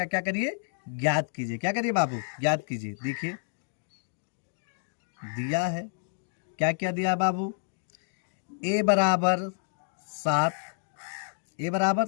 क्या करिए? ज्ञात कीजिए। क्या करिए बाबू? ज्ञात कीजिए। देखिए दिया है, क्या क्या दिया बाबू? ए बराबर 7, ए बराबर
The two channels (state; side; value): silent; right; digital silence